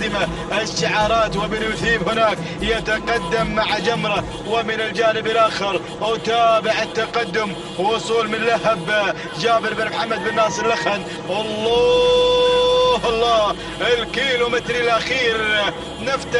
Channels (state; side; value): identical; both; correlation 1.00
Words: الشعارات، وبن مثيب هناك يتقدم مع جمرة، ومن الجانب الآخر أتابع التقدم، وصول من لهب جابر بن محمد بن ناصر لخن. الله، الكيلومتر الأخير